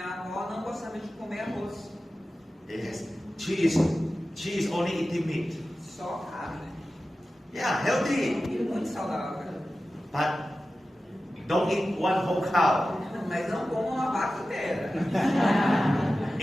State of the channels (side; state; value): both; normal; correlation 0.94